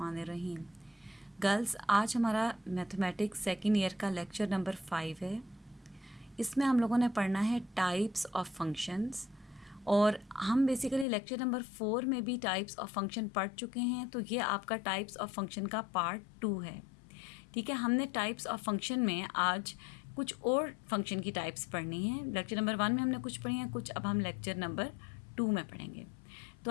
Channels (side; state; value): right; drops out; at 11.1 s